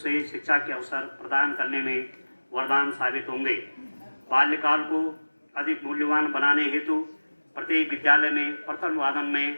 शिक्षा के अवसर प्रदान करने में वरदान साबित होंगे। बाल्यकाल को अधिक मूल्यवान बनाने हेतु प्रत्येक विद्यालय में प्रथम वादन में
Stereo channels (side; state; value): both; inverted; correlation -1.00